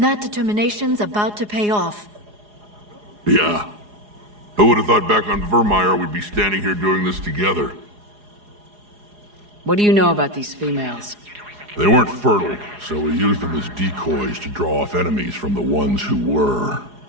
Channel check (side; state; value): left; late; 4.8 ms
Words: that determination's about to pay off. Yeah. Who would have thought back on Vermeer we'd be standing here doing this together? What do you know about these females? They weren't fertile, so we used them as decoys to draw off enemies from the ones who were.